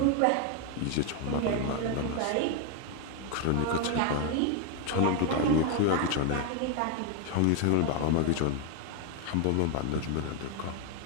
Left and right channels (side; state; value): both; different; correlation 0.01